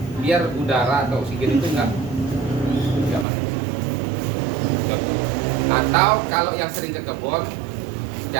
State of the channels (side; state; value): left; drops out; at 3.2 s